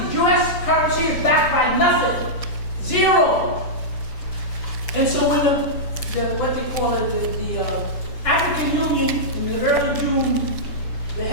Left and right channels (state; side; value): late; right; 7.0 ms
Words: U.S. currency is backed by nothing. 0 And so when what they call it, the African Union, in the early June, the